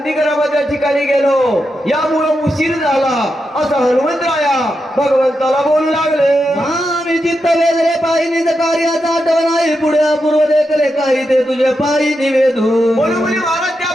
ठिकाणी गेलो, यामुळे उशीर झाला असं हनुमंतराया भगवंताला बोलू लागले. आम्ही चित्त वेगळे पायी निज कार्याचा आठवण नाही, पुढे पूर्व देखले काही ते तुझे पायी निवेदू. म्हणून म्हणजे महाराज त्या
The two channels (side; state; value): both; normal; correlation 0.87